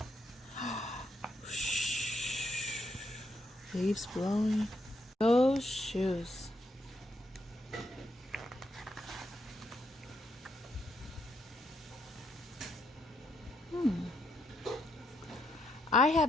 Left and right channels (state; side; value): normal; both; correlation 0.77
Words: Leaves blowing. Those shoes. I